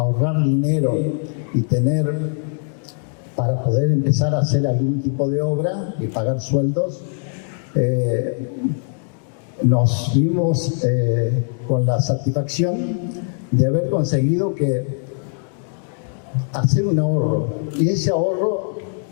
dinero y para poder empezar a hacer algún tipo de obra y pagar sueldos, nos vimos con la satisfacción de haber conseguido hacer un ahorro, y ese ahorro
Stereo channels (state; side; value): silent; right; 58 dB below the other